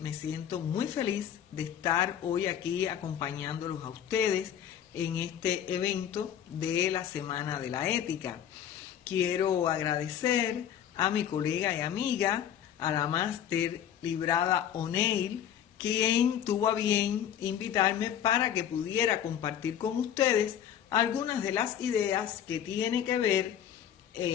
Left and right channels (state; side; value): quieter; right; 9.8 dB